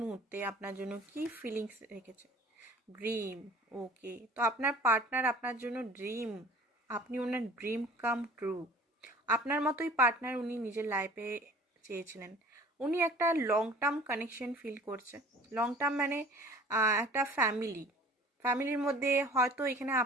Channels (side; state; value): both; normal; correlation 0.47